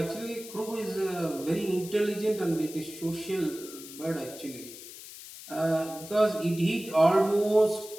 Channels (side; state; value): left; noise; hiss, 14 dB below the sound